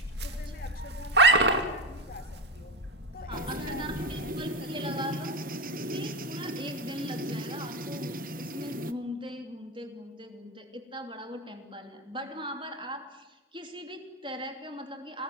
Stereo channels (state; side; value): normal; both; correlation 0.17